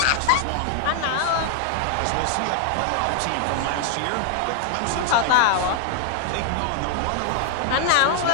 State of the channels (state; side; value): different; both; correlation 0.00